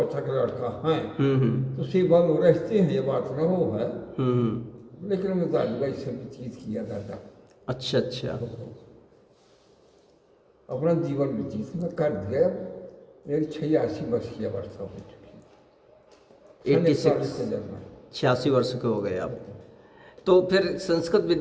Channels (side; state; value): both; identical; correlation 1.00